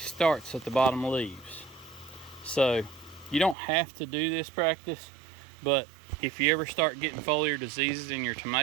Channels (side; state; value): left; drops out; at 3.6 s